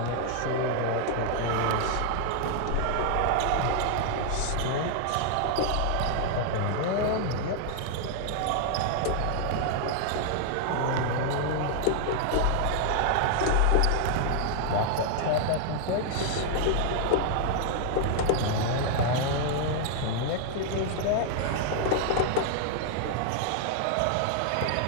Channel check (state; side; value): different; both; correlation 0.00